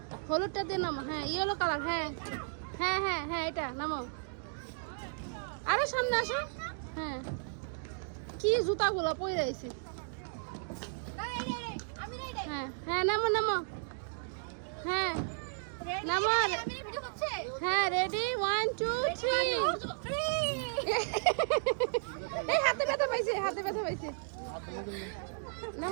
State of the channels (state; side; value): silent; left; digital silence